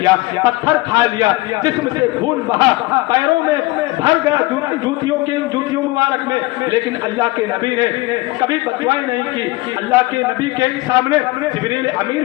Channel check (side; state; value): right; quieter; 21.0 dB